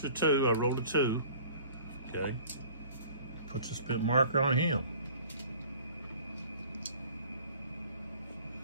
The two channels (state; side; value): inverted; both; correlation -0.48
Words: of 2, I rolled a 2. Okay, puts a spent marker on him.